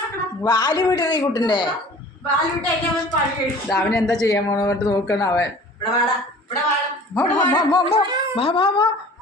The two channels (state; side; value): normal; both; correlation 0.45